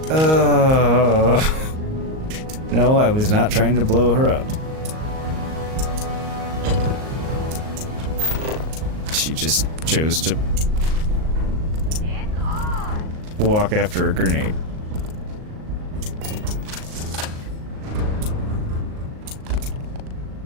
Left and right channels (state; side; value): late; left; 38 ms